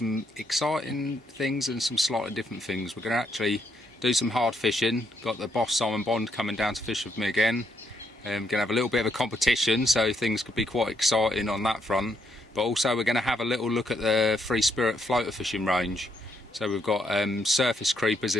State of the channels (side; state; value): both; normal; correlation 0.75